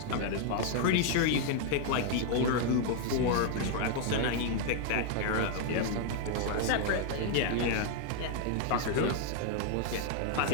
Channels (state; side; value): different; both; correlation 0.00